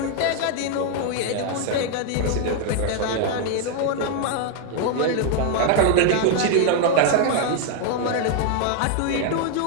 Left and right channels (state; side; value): different; both; correlation 0.00